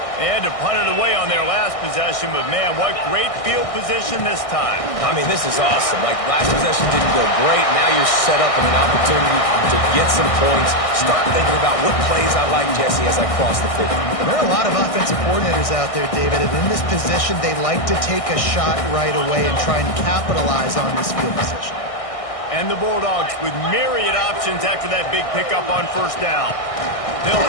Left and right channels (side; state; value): right; late; 1.6 ms